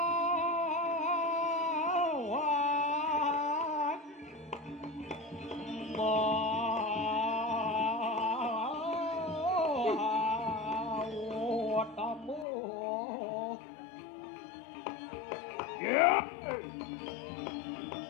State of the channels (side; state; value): right; drops out; at 12.5 s